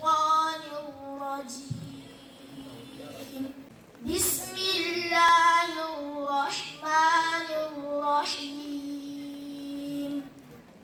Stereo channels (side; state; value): both; identical; correlation 1.00